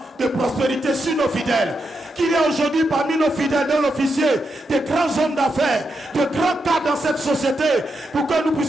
de prospérité sur nos fidèles. Qu'il y a aujourd'hui parmi nos fidèles, nos officiers, des grands hommes d'affaires, de grands cadres dans cette société, pour que nous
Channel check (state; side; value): normal; both; correlation 0.84